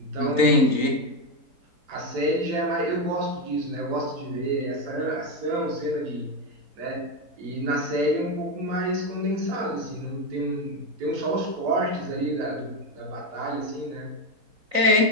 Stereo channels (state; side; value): late; left; 3.9 ms